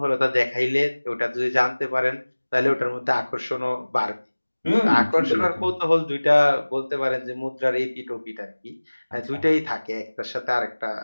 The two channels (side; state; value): both; inverted; correlation -1.00